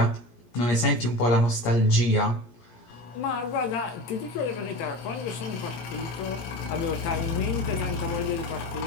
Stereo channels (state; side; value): late; right; 17 ms